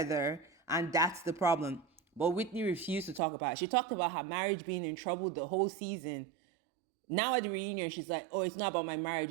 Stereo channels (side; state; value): left; drops out; at 3.2 s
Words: and that's the problem. But Whitney refused to talk about it. She talked about her marriage being in trouble the whole season. Now at the reunion, she's like, oh, it's not about my marriage.